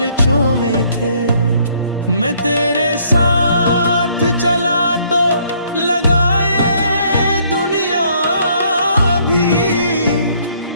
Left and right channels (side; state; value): both; inverted; correlation -0.65